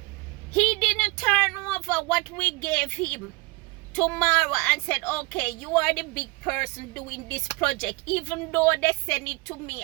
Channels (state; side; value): quieter; left; 25.0 dB